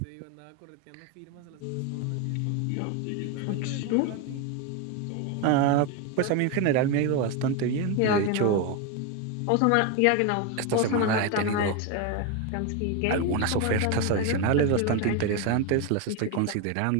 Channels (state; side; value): different; both; correlation 0.02